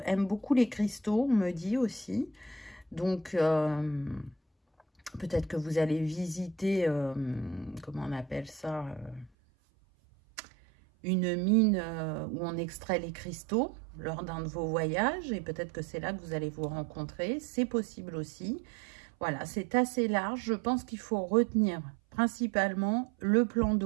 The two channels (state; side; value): drops out; left; at 9.3 s